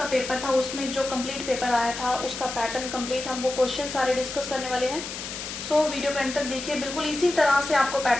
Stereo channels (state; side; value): noise; left; hiss, 8 dB below the sound